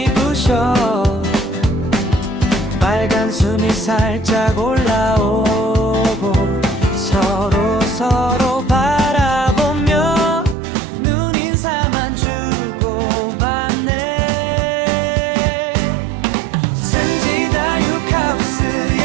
부셔 빨간 숨이 살짝 올라오고 서로 바라보며 눈인사만 주고받네.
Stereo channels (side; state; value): left; drops out; at 10.6 s